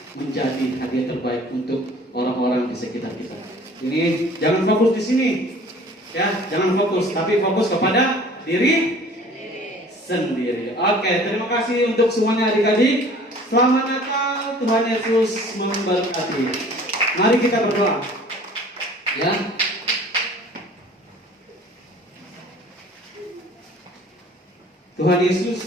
menjadi hadiah terbaik untuk orang-orang di sekitar kita. Ini jangan fokus di sini. Ya, jangan fokus, tapi fokus kepada diri sendiri. Oke, terima kasih untuk semuanya adik-adik. Selamat Natal, Tuhan Yesus memberkati. Mari kita berdoa. Ya. Tuhan Yesus,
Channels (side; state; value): both; normal; correlation 0.49